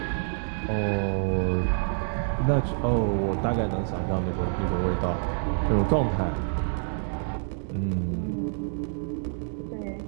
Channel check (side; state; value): left; silent; 60 dB below the other